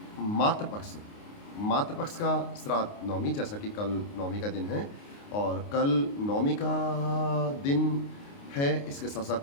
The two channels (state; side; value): late; right; 29 ms